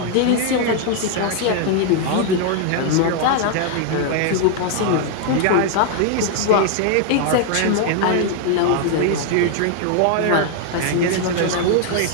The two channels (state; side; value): different; both; correlation 0.00